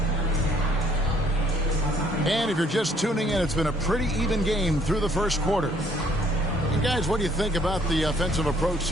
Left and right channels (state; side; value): normal; both; correlation 0.63